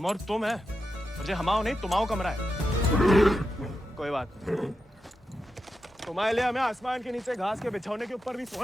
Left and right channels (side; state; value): both; normal; correlation 0.88